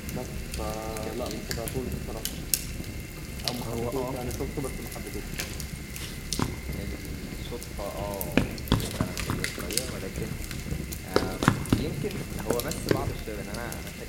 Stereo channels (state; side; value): identical; both; correlation 1.00